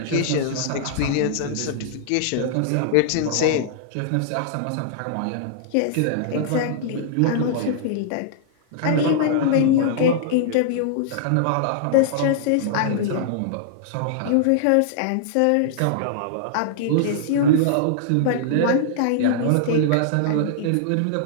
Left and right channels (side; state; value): both; different; correlation -0.01